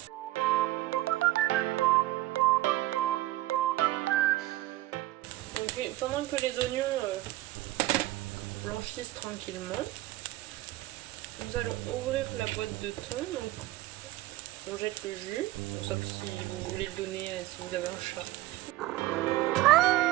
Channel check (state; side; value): quieter; left; 17.0 dB